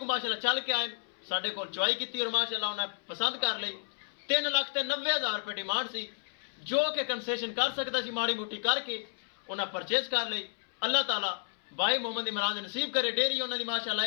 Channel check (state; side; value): silent; right; 57 dB below the other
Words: माशाल्लाह चल के आए, साडे कोल चुआई की और माशाल्लाह उन्हें पसंद कर ली। 3,90,000 रुपये डिमांड सी जो कि कंसेशन कर सकता सी, माड़ी मोटी करके उन्हें परचेज कर ली। अल्लाह ताला भाई मोहम्मद इमरान ने नसीब करे, डेयरी उन्होंने माशाल्लाह